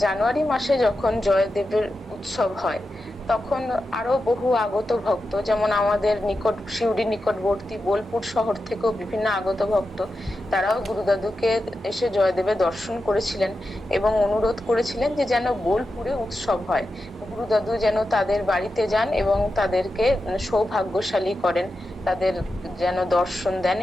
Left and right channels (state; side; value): normal; both; correlation 0.90